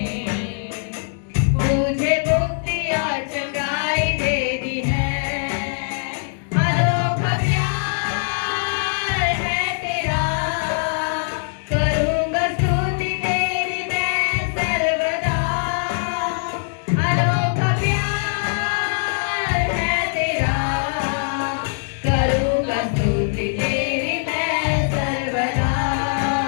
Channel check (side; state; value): right; silent; digital silence